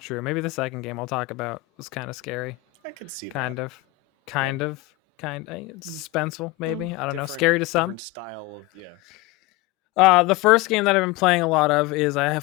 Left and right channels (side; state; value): right; quieter; 18.7 dB